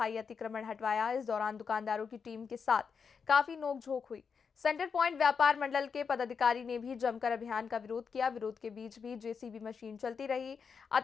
अतिक्रमण हटवाया। इस दौरान दुकानदारों की टीम के साथ काफी नोकझोंक हुई। सेंटर पॉइंट व्यापार मंडल के पदाधिकारी ने भी जमकर अभियान का विरोध किया। विरोध के बीच भी जेसीबी मशीन चलती रही,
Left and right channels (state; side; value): quieter; right; 6.0 dB